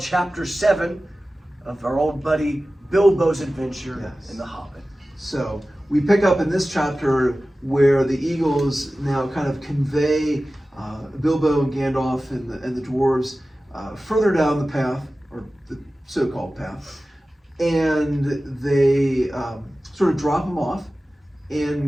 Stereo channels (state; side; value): normal; both; correlation 0.96